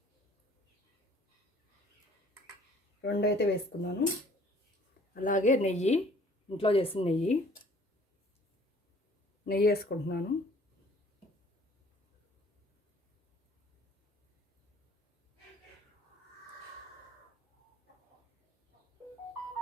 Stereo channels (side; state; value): both; normal; correlation 0.56